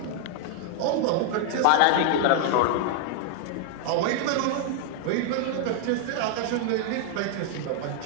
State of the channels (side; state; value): both; different; correlation 0.00